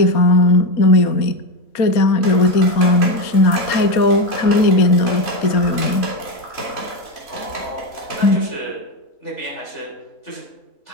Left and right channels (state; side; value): late; right; 4.2 ms